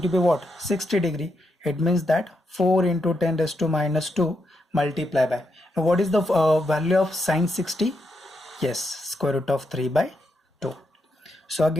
to be what? 60 degree. It means that 4 into 10 raised to minus 2 multiply by, now what is the value of sine 60? Yes, square root of 3 by 2. So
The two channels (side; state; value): both; normal; correlation 0.82